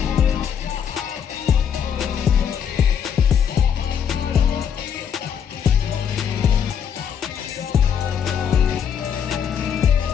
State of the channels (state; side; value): quieter; right; 7.9 dB